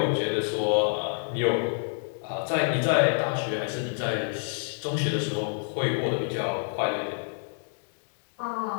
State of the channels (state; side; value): silent; right; digital silence